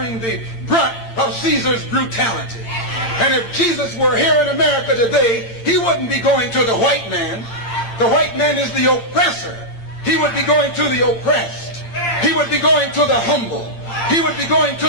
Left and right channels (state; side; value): late; right; 8.7 ms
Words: the brunt of Caesar's brutality. And if Jesus were here in America today, he wouldn't be going to the white man. The white man is the oppressor. He would be going to the oppressed. He would be going to the humble. He would be going to